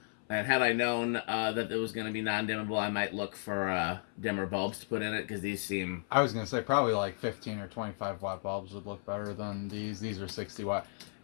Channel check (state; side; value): silent; right; 55 dB below the other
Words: And had I known that it was going to be non-dimmable, I might look for dimmer bulbs to put in it, because these seem... I was going to say probably like 15 or 25 watt bulbs would look better than these. These are 60 watt.